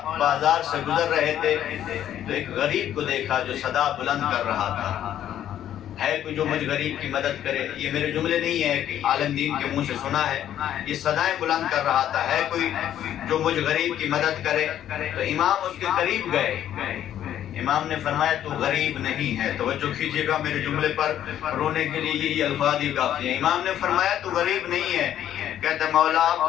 بازار سے گزر رہے تھے تو ایک غریب کو دیکھا جو صدا بلند کر رہا تھا، ہے کوئی جو مجھ غریب کی مدد کرے۔ یہ میرے جملے نہیں ہے کہ عالم دین کے منہ سے سنا ہے، یہ صدائیں بلند کر رہا تھا، ہے کوئی جو مجھ غریب کی مدد کرے۔ تو امام اس کے قریب گئے، امام نے فرمایا تو غریب نہیں ہے. توجہ کیجئے گا میرے جملے پر, رونے کے لیے یہی الفاظ ہی کافی ہیں. امام نے فرمایا تو غریب نہیں ہے. کہتا مولا آپ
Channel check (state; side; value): quieter; right; 11.1 dB